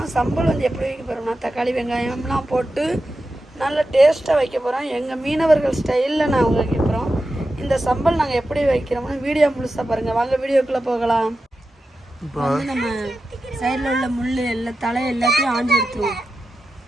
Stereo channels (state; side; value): normal; both; correlation 0.91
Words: சம்பல் வந்து எப்படி வைக்க போகிறோம்னா தக்காளி வெங்காயம்லாம் போட்டு நல்ல டேஸ்ட்டாக வைக்க போகிறோம். எங்கள் மீனவர்கள் ஸ்டைலில் நாங்கள் வைக்க போகிறோம். இந்த சம்பல் நாங்கள் எப்படி வைக்கிறோம்னு வீடியோ முழுசாக பாருங்கள். வாங்க வீடியோக்குள்ளே போகலாம். இப்போ வந்து நம்ம சைடில் உள்ள முள் எல்லாம் தலை எல்லாத்தையும் ஆஞ்சு எடுத்துருவோம்.